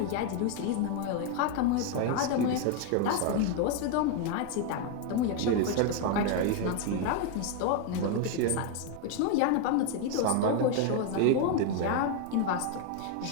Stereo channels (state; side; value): different; both; correlation 0.01